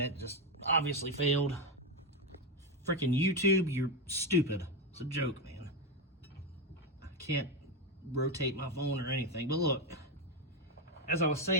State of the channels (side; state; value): both; normal; correlation 0.09